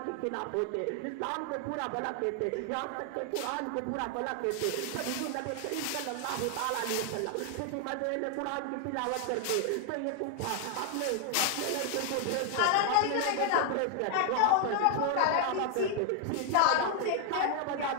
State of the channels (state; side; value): different; both; correlation 0.00